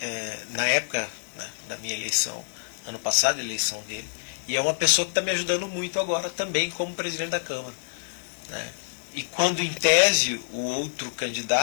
Na época, né, da minha eleição, ano passado, a eleição dele, e é uma pessoa que está me ajudando muito agora também como presidente da Câmara, né. E quando, em tese, o outro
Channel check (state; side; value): silent; right; digital silence